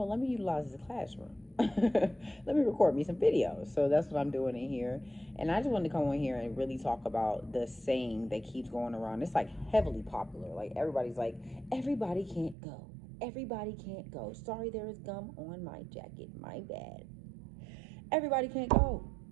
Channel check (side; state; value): left; drops out; at 12.6 s